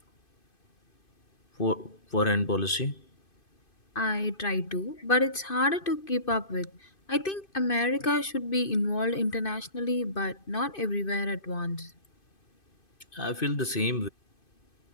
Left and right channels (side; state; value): right; late; 2.5 ms